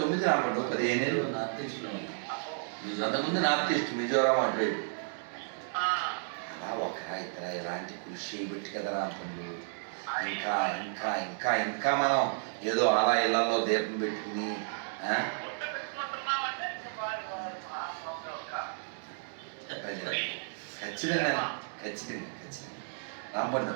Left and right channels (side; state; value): left; silent; digital silence